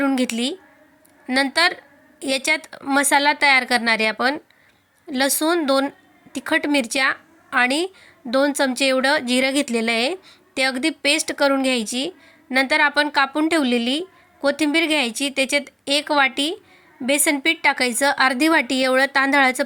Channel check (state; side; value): identical; both; correlation 1.00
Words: घेतली। नंतर याच्यात मसाला तयार करणार आहे आपण। लसूण, 2 तिखट मिरच्या आणि 2 चमचे एवढं जिरं घेतलेलं आहे, ते अगदी पेस्ट करून घ्यायची। नंतर आपण कापून ठेवलेली कोथिंबीर घ्यायची, त्याच्यात 1 वाटी बेसन पीठ टाकायचं, अर्धी वाटी एवढं तांदळाचं